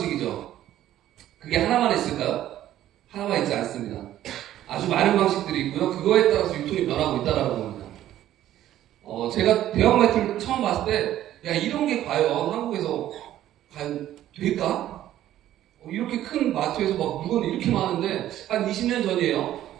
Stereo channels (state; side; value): quieter; left; 12.8 dB